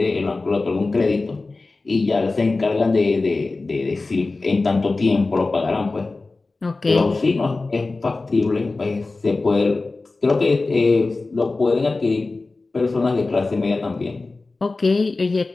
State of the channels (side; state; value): right; quieter; 3.5 dB